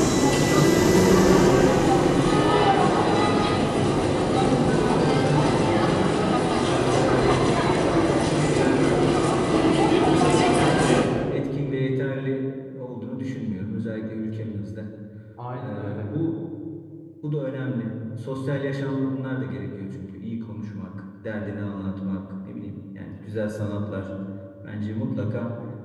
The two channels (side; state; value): both; identical; correlation 1.00